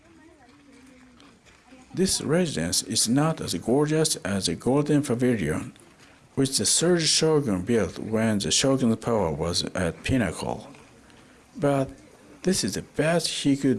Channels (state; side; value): identical; both; correlation 1.00